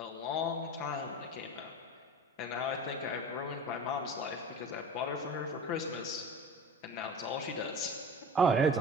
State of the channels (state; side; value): normal; both; correlation 0.35